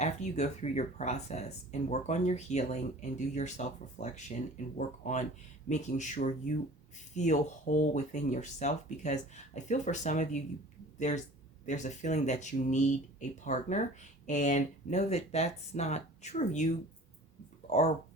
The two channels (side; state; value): both; normal; correlation 0.44